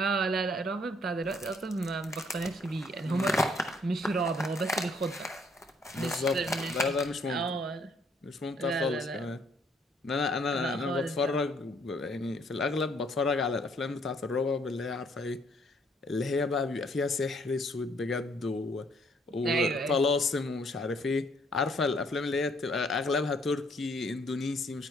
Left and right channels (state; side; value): normal; both; correlation 0.66